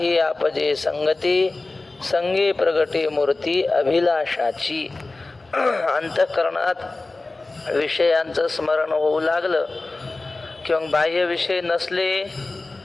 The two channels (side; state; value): right; quieter; 3.3 dB